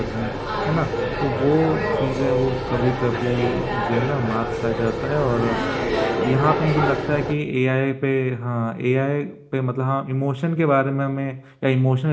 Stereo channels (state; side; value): identical; both; correlation 1.00